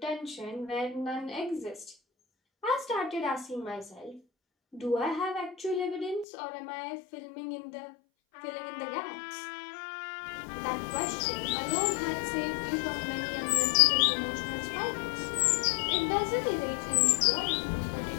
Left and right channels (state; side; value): drops out; right; at 6.2 s